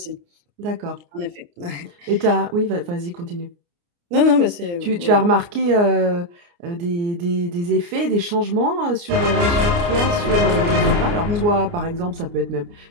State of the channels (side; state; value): left; late; 29 ms